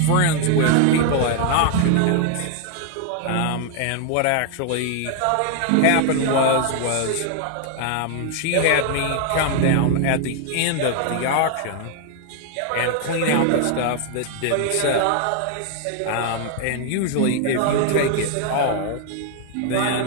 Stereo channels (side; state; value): both; different; correlation 0.00